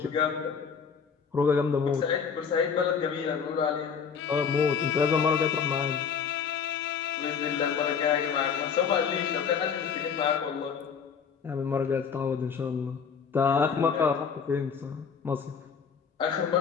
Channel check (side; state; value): right; quieter; 6.5 dB